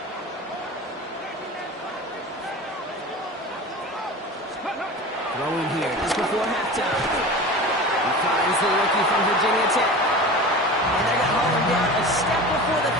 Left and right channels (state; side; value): normal; both; correlation 0.34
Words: Throwing here just before halftime. He finds the rookie from Virginia Tech. And they're going to haul him down a step before the